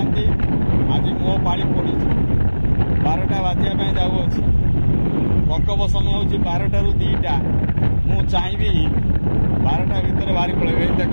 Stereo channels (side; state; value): both; inverted; correlation -1.00